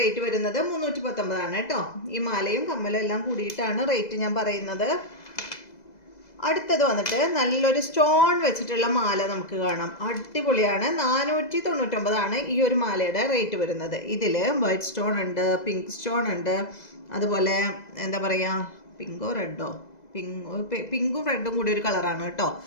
വരുന്നത് 319 ആണ് കേട്ടോ. ഈ മാലയും കമ്മലും എല്ലാം കൂടിയിട്ടാണ് റേറ്റ് ഞാൻ പറയുന്നത്. അടുത്തത് വന്നിട്ട് നല്ലൊരു സ്റ്റോൺ വെച്ചിട്ടുള്ള മാല നമുക്ക് കാണാം. അടിപൊളിയാണ്. 499 ആണ് ഈ ഒരു മാലയുടെ റേറ്റ് വരുന്നത്. ഇതിൽ വൈറ്റ് സ്റ്റോൺ ഉണ്ട്, പിങ്ക് സ്റ്റോൺ ഉണ്ട്, അതുപോലെ എന്താ പറയുക, പിങ്കും റെഡും കൂടി ഒരു കളറാണ് കേട്ടോ.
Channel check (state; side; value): late; right; 2.0 ms